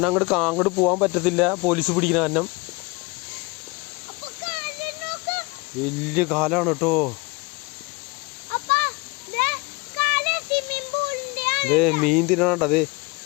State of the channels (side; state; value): right; quieter; 26.6 dB